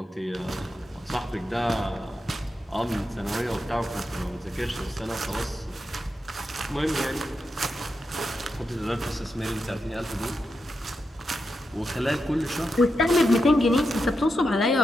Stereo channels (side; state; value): both; normal; correlation 0.86